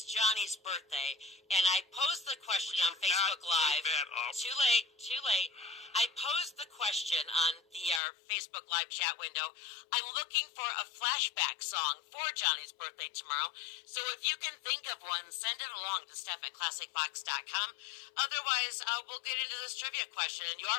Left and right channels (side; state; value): right; drops out; at 8.0 s